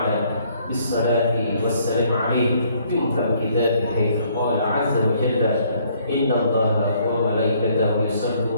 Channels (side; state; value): both; inverted; correlation -0.65